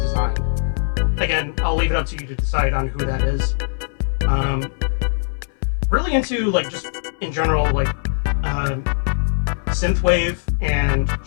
Again, I'll leave it up to you to decide on who that is. Really into, like, just in general, like, synthwave and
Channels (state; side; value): silent; right; 62 dB below the other